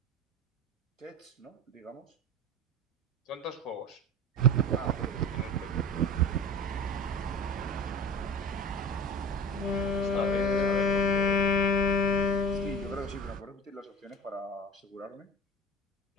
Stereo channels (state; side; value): normal; both; correlation 0.33